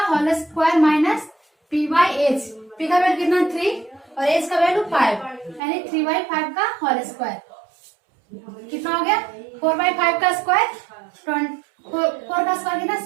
whole square minus p by H. p का वैल्यू कितना 3 और h का वैल्यू 5, यानी 3/5 का होल स्क्वायर। कितना हो गया 4/5 का स्क्वायर, 4 का स्क्वायर कितना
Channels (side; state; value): left; drops out; at 5.6 s